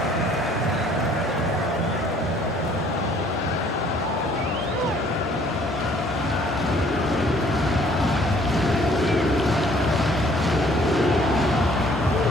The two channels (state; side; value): normal; both; correlation 0.59